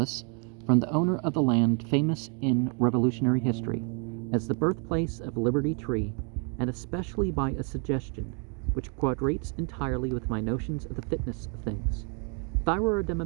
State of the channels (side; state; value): left; quieter; 38.2 dB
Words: from the owner of the land famous in Revolutionary history as the birthplace of Liberty Tree, and especially by a suggestion which quadrates entirely with my notions of the fitness of things. If I were a